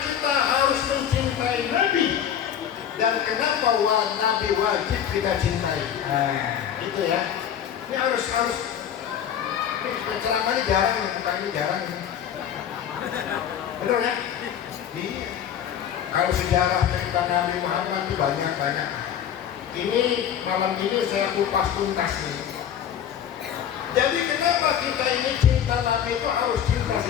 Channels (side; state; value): right; quieter; 9.4 dB